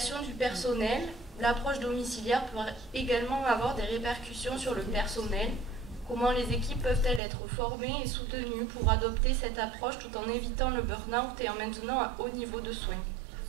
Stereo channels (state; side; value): drops out; left; at 7.2 s